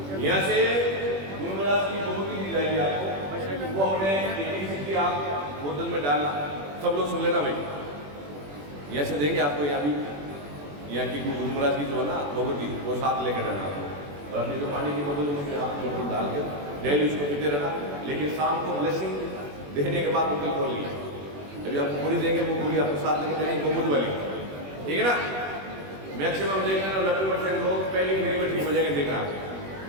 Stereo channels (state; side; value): late; left; 21 ms